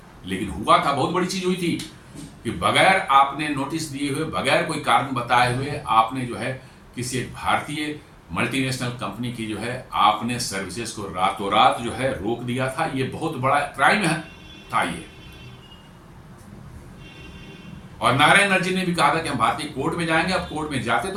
लेकिन हुआ था, बहुत बड़ी चीज हुई थी कि बगैर आपने नोटिस दिए हुए, बगैर कोई कारण बताए हुए आपने जो है किसी एक भारतीय मल्टीनेशनल कंपनी की जो है आपने सर्विसेज को रातों रात जो है रोक दिया था। ये बहुत बड़ा क्राइम था ये। और नायरा एनर्जी ने भी कहा था कि हम भारतीय कोर्ट में जाएंगे। अब कोर्ट में जाते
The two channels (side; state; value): both; identical; correlation 1.00